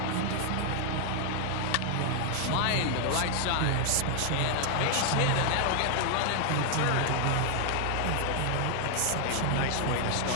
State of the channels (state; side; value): different; both; correlation 0.00